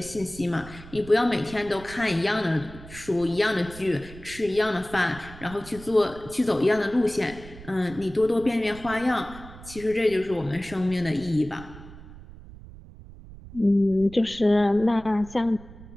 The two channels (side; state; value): right; noise; rumble, 17 dB below the sound